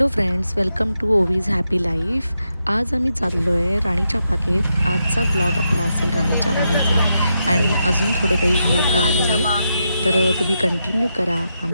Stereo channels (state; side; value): inverted; both; correlation -0.84